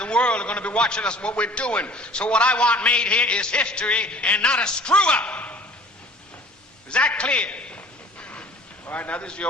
world are going to be watching us, what we're doing. So what I want made here is history and not a screw-up. Is that clear? All right, now this is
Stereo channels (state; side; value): normal; both; correlation 0.49